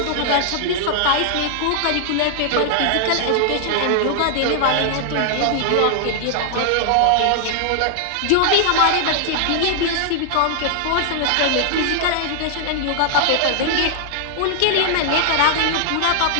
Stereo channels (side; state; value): both; different; correlation 0.00